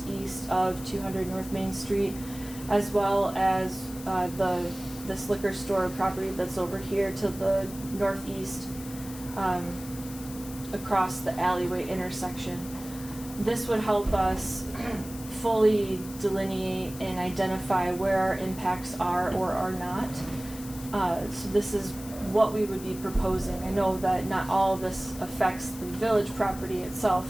east of 200 North Main Street, as well as this liquor store property that's over here to the northeast across the alleyway intersection. This would help us fully delineate and identify where our impacts are or are not. So this is what we would be proposing. I know that not all of this affects the village property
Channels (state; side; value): noise; left; hiss, 15 dB below the sound